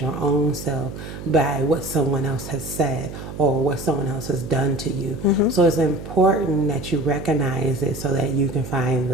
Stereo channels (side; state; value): right; noise; hum, 11 dB below the sound